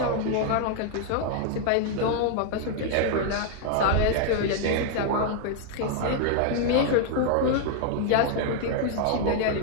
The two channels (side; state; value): both; different; correlation 0.00